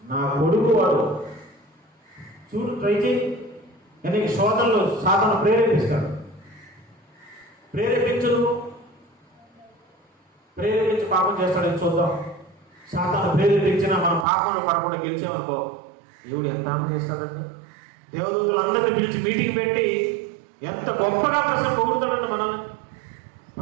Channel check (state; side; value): drops out; left; at 14.2 s